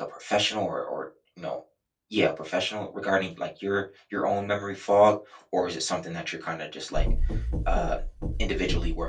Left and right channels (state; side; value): identical; both; correlation 1.00